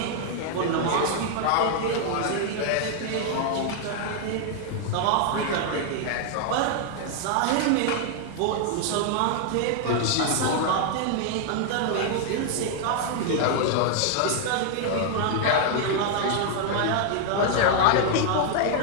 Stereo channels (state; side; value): different; both; correlation 0.00